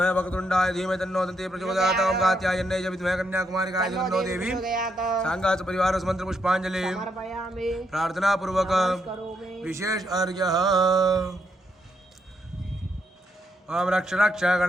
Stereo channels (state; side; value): normal; both; correlation 0.78